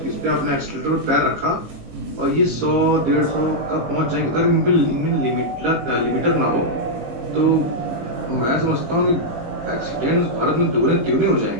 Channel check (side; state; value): left; late; 19 ms